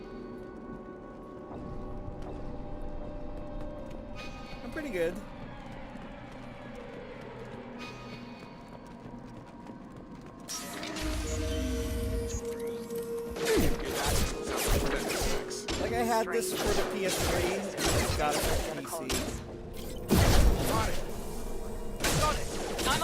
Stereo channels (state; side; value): identical; both; correlation 1.00